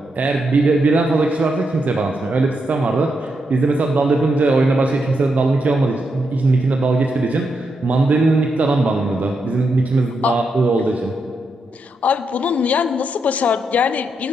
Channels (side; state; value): both; normal; correlation 0.83